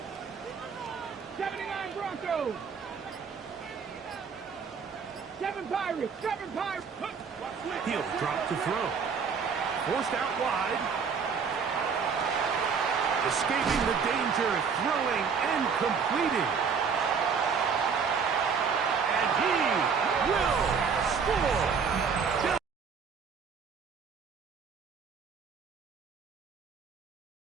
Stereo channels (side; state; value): left; quieter; 6.0 dB